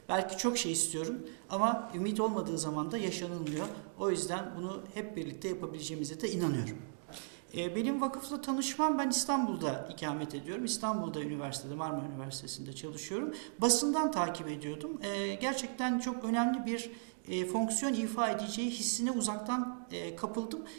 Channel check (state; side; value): silent; left; digital silence